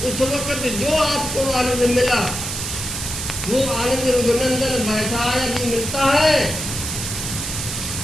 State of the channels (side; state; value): right; noise; hiss, 5 dB below the sound